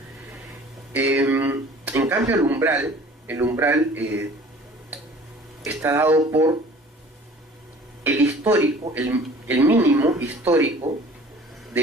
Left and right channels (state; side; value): normal; both; correlation 0.48